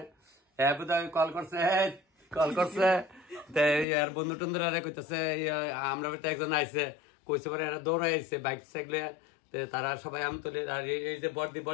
কল করছে আর বন্ধু টন্ধুরা কইতেছে আমরা একজন আইছে কইছে পরে এরা দৌড়াই আইছে বাইক সাইকেলে তারা সবাই আম তুলে আর এই যে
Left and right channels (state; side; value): drops out; right; at 3.9 s